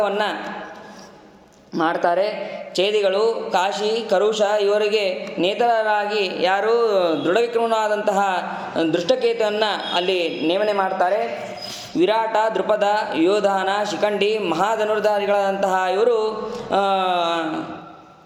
ಮಾಡ್ತಾರೆ. ಛೇದಿಗಳು, ಕಾಶಿ, ಕರುಷ ಇವರಿಗೆ ನೇತರರಾಗಿ ಯಾರು ದೃಢವಿಕ್ರಮನಾದಂತಹ ದೃಷ್ಟಕೇತುವನ್ನು ಅಲ್ಲಿ ನೇಮನೆ ಮಾಡ್ತಾರೆ. ವಿರಾಟ, ದೃಪದ, ಯೋಧಾನ, ಶಿಖಂಡಿ, ಮಹಾಧನುರ್ಧಾರಿಗಳಾದಂತಹ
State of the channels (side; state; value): both; identical; correlation 1.00